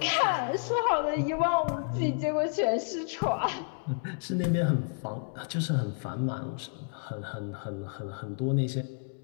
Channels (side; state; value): right; silent; digital silence